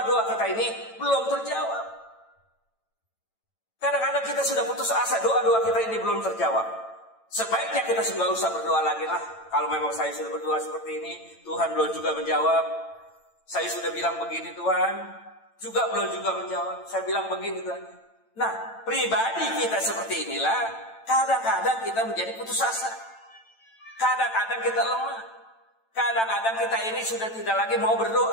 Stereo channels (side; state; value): right; late; 8.9 ms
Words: kita ini belum terjawab. Kadang-kadang kita sudah putus asa, doa-doa kita ini belum terjawab. Sebaiknya kita sudah usah berdoa lagi lah. Kalau memang saya sudah berdoa seperti ini, Tuhan belum juga menjawab. Saya sudah bilang begini Tuhan, juga belum juga menjawab. Saya bilang begini Tuhan. Nah, pribadi kita seperti inilah, kadang-kadang kita menjadi putus asa. Kadang-kadang kita lemah. Kadang-kadang kita ini sudah tidak lagi mau